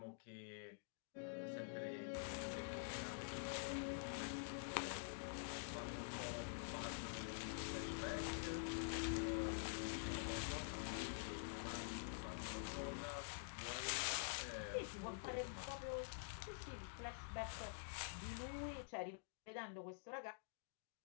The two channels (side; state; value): right; silent; digital silence